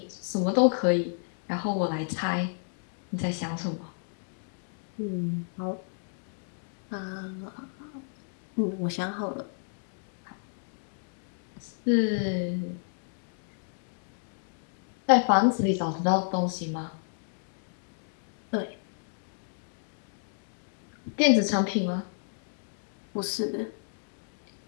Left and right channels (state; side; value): silent; right; digital silence